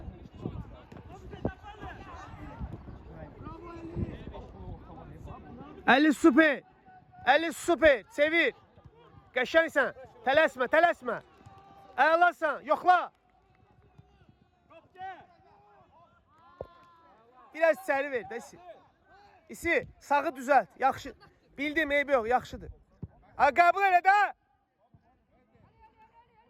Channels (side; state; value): both; identical; correlation 1.00